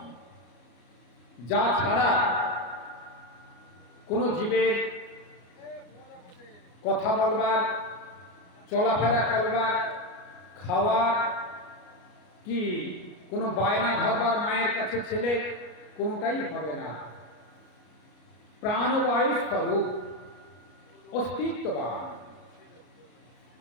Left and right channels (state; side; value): late; right; 33 ms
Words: যা ছাড়া কোনো জীবের কথা বলবার, চলাফেরা করবার, খাওয়ার কি কোনো বায়না ধরবার মায়ের কাছে ছেলে কোনোটাই হবে না। প্রাণবায়ু স্বরূপ, অস্তিত্ববান।